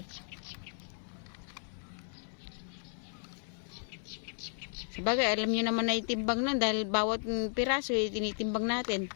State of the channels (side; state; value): right; silent; 55 dB below the other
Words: Sabagay, alam niyo naman na itimbang na dahil bawat piraso tinitimbang natin.